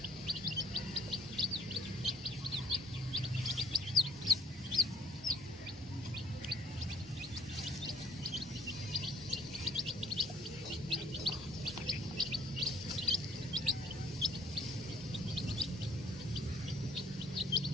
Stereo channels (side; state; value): both; normal; correlation 0.60